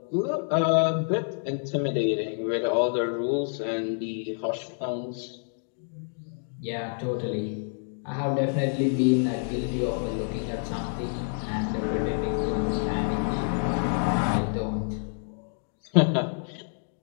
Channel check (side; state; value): right; silent; 59 dB below the other